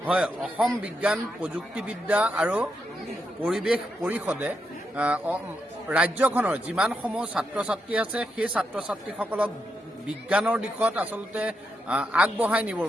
হয়, অসম বিজ্ঞান প্ৰযুক্তিবিদ্যা আৰু পৰিৱেশ পৰিষদে ৰাজ্যখনৰ যিমানসমূহ ছাত্ৰ ছাত্ৰী আছে সেই ছাত্ৰ ছাত্ৰীসকলক বিজ্ঞানৰ দিশত আচলতে আগবঢ়াই নিবৰ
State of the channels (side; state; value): both; normal; correlation 0.83